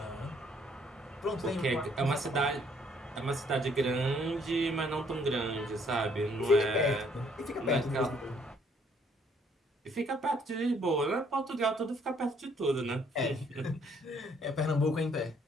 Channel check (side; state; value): both; normal; correlation 0.65